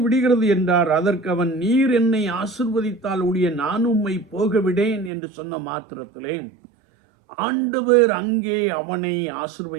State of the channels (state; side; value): drops out; left; at 5.1 s